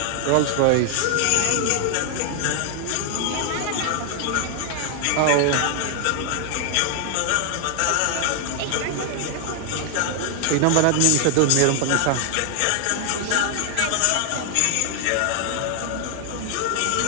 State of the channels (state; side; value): different; both; correlation 0.00